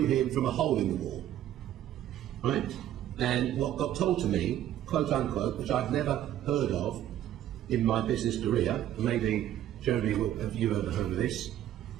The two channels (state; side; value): quieter; left; 11.9 dB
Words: him from a hole in the wall, right? And what got told to me, quote unquote, which I've never heard of, in my business career, maybe Jeremy, have you ever heard of this?